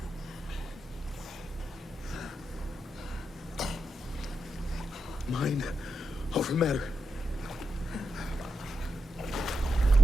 Mind over matter.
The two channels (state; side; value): normal; both; correlation 0.86